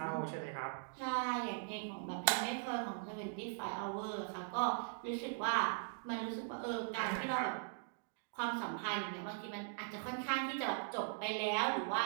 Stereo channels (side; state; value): left; silent; digital silence